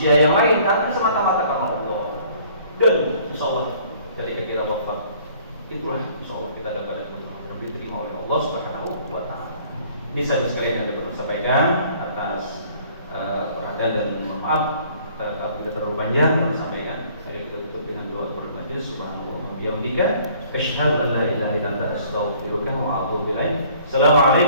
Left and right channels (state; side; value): inverted; both; correlation -0.56